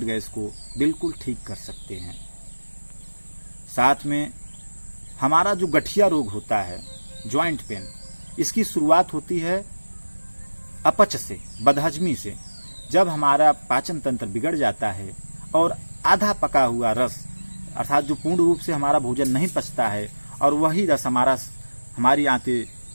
गैस को बिल्कुल ठीक कर सकते हैं। साथ में हमारा जो गठिया रोग होता है, जॉइंट पेन, इसकी शुरुआत होती है अपच से, बदहजमी से। जब हमारा पाचन तंत्र बिगड़ जाता है और आधा पका हुआ रस अर्थात जो पूर्ण रूप से हमारा भोजन नहीं पचता है और वही रस हमारी आंतें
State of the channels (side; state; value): both; inverted; correlation -1.00